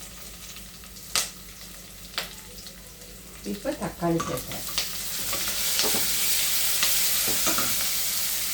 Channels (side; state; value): both; identical; correlation 1.00